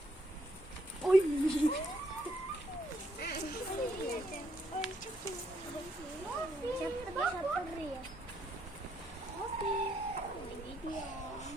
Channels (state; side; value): normal; both; correlation 0.73